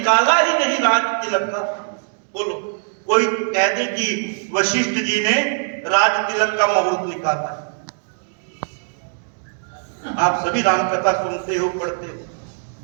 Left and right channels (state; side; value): silent; left; 65 dB below the other